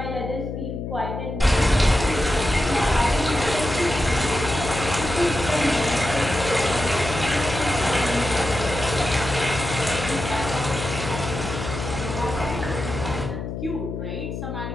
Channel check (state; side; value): noise; left; hum, 6 dB below the sound